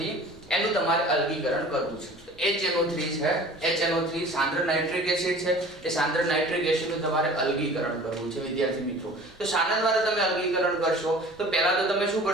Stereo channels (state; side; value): normal; both; correlation 0.44